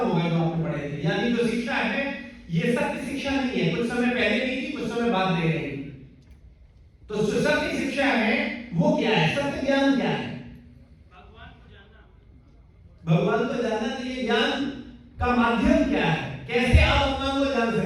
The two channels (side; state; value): both; identical; correlation 1.00